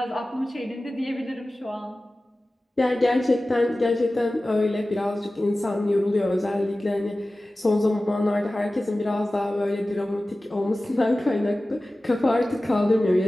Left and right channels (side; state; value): both; normal; correlation 0.96